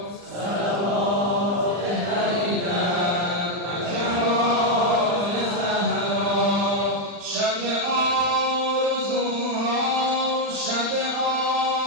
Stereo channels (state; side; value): late; left; 40 ms